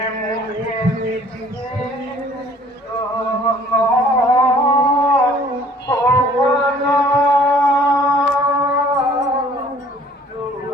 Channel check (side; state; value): both; normal; correlation 0.55